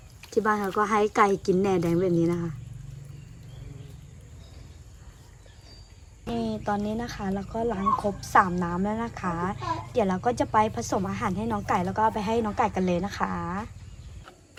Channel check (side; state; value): both; identical; correlation 1.00